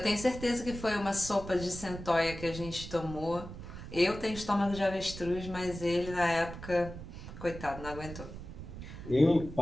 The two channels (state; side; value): noise; right; rumble, 11 dB below the sound